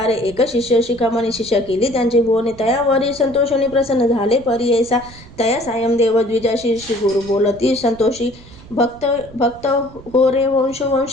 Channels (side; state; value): right; noise; rumble, 20 dB below the sound